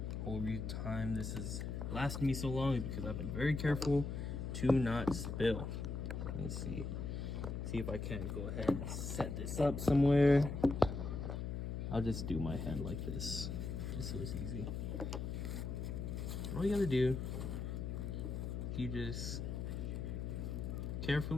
Whole time this is lasting me so long is because I've been very careful to not spill. Let me see if I can go ahead and set this up somewhere. I'll just do my hand like this, just so it's easy. All you gotta do, you just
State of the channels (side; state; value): left; noise; hum, 3 dB below the sound